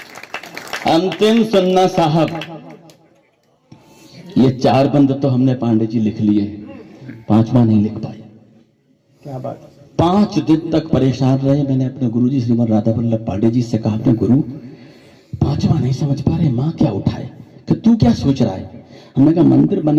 अंतिम सुनना साहब, ये 4 बंद तो हमने पांडे जी लिख लिए, 5वां नहीं लिख पाए। क्या बात। 5 दिन तक परेशान रहे। मैंने अपने गुरुजी श्रीमद राधा वल्लभ पांडे जी से कहा अपने गुरु 5वां नहीं समझ पा रहे, माँ क्या उठाए, कि तू क्या सोच रहा है? हमने कहा मंदिर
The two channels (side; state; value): both; identical; correlation 1.00